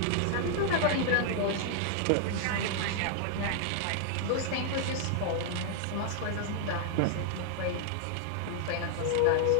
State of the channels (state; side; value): different; both; correlation 0.00